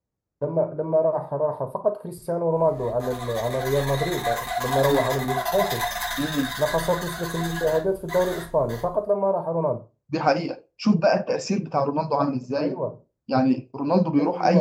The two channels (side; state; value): both; identical; correlation 1.00